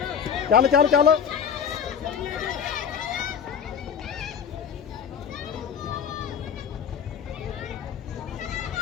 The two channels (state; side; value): quieter; right; 7.5 dB